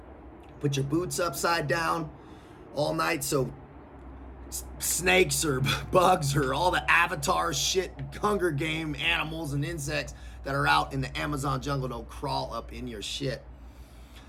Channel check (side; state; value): both; identical; correlation 1.00